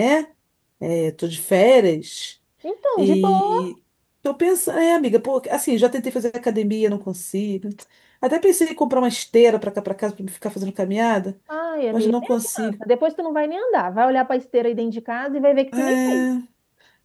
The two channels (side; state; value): both; identical; correlation 1.00